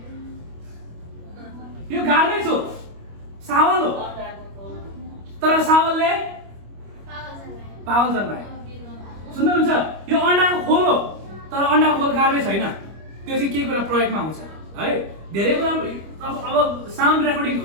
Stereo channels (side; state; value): left; late; 25 ms